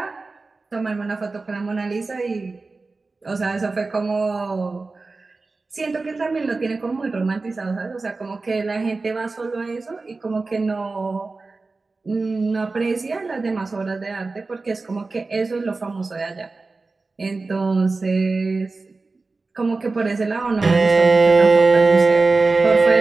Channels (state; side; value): quieter; left; 3.7 dB